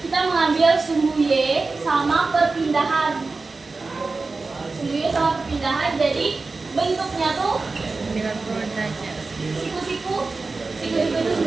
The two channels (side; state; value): left; quieter; 3.8 dB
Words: kita mengambil sumbu Y sama perpindahan. Sumbu Y sama perpindahan, jadi bentuknya tuh 90 derajat. siku-siku itu